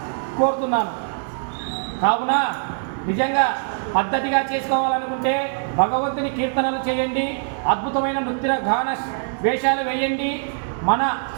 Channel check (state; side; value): silent; left; digital silence